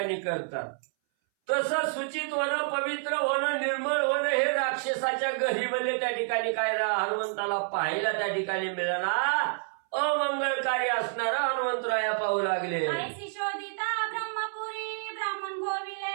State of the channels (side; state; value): left; silent; 59 dB below the other